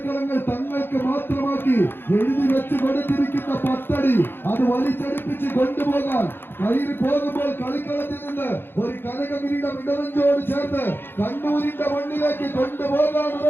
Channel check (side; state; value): right; late; 0.10 ms